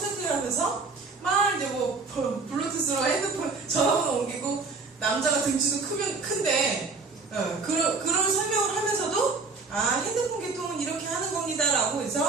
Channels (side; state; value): left; quieter; 4.3 dB